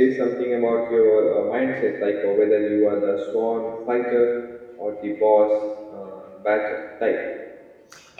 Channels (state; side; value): identical; both; correlation 1.00